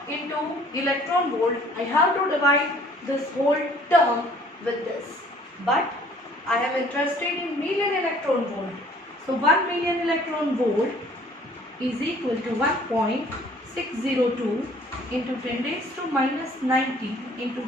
into electron volt, I have to divide this whole term with this. But I am interested in million electron volt. So 1 million electron volt is equal to 1.602 into 10 raised to minus 90 into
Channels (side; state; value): both; normal; correlation 0.56